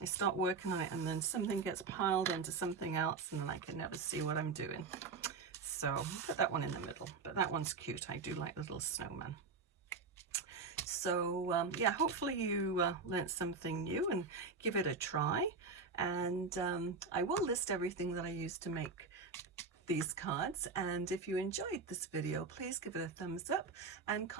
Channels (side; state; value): left; quieter; 4.6 dB